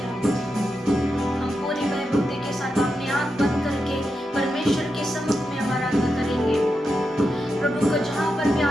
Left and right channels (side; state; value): both; normal; correlation 0.87